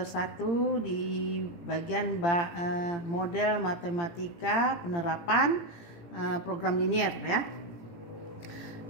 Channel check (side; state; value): right; late; 17 ms